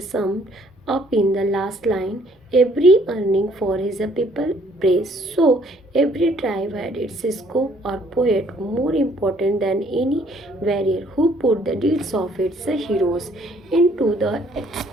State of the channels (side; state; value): both; normal; correlation 0.62